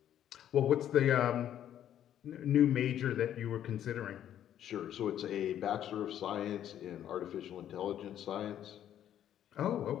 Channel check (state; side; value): quieter; right; 10.7 dB